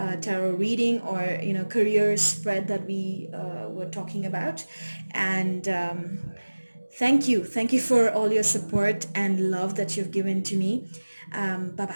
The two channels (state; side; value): inverted; both; correlation -1.00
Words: tarot reading, or career spread that we were talking about. And thank you for all your support and love that you've given to me. Bye